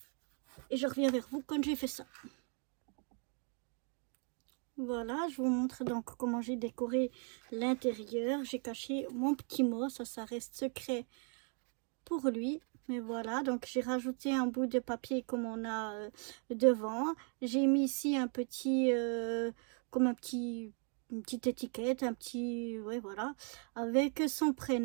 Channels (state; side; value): quieter; left; 39.6 dB